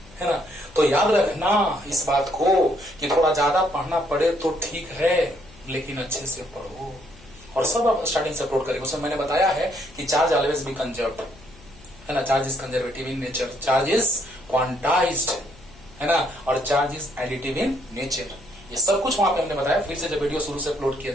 है ना। तो याद रखना इस बात को कि थोड़ा ज्यादा पढ़ना पड़े तो ठीक है, लेकिन अच्छे से पढ़ो। और सब आप स्टार्टिंग से अपलोड करेंगे। उसमें मैंने बताया है कि चार्ज ऑलवेज बी कंजर्व्ड, है ना, charge is conservative in nature, charge is quantized, है ना, और charge is additive in nature. ये सब कुछ वहां पे हमने बताया। फिर से जब वीडियो शुरू से अपलोड किया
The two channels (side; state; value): left; noise; hum, 23 dB below the sound